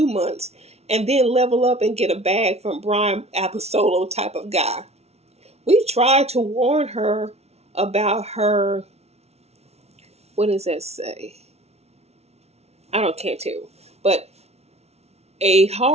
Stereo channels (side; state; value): left; late; 0.31 ms